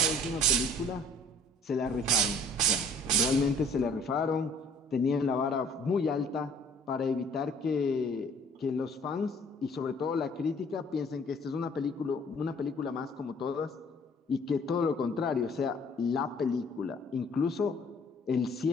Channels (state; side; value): normal; both; correlation 0.54